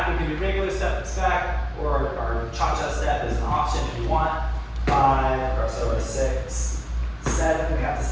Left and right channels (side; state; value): both; identical; correlation 1.00